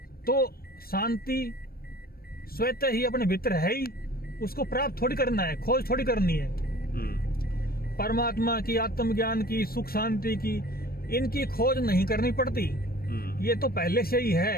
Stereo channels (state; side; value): late; right; 0.44 ms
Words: तो शांति स्वतः ही अपने भीतर है ही। उसको प्राप्त थोड़ी करना है, खोज थोड़ी करनी है। परमात्मा की, आत्मज्ञान की, सुख शांति की, इनकी खोज नहीं करनी पड़ती। ये तो पहले से ही